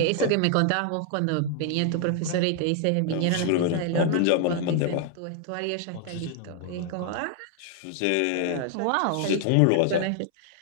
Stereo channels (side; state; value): both; different; correlation 0.00